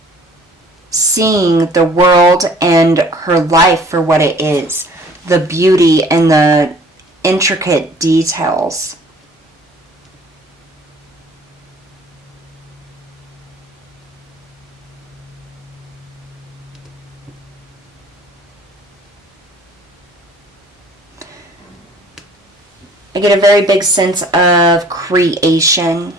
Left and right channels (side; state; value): both; normal; correlation 0.52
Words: Seeing the world and her life for what it is, the beauty and the intricate details. I get a very big sense of creation,